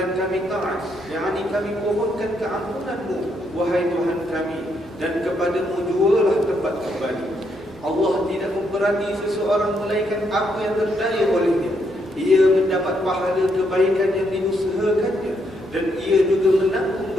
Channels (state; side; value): normal; both; correlation 0.76